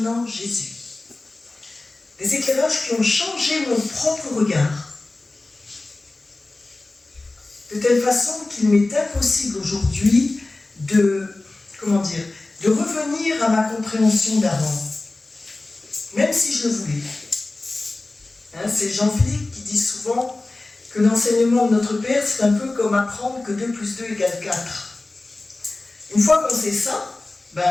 Jésus. Des éclairages qui ont changé mon propre regard. De telle façon qu'il m'est impossible aujourd'hui de revenir à ma compréhension d'avant. Même si je le voulais. C'est Jean-Philippe qui dit souvent que l'enseignement de notre Père, c'est un peu comme apprendre que 2 plus 2 égale 4. Une fois qu'on sait ça,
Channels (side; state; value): right; quieter; 3.1 dB